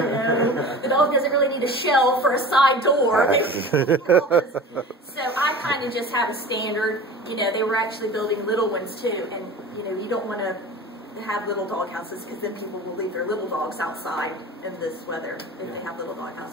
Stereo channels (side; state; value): both; normal; correlation 0.37